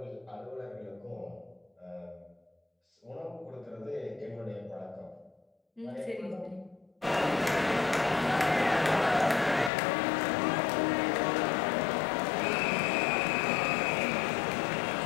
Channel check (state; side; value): drops out; right; at 9.7 s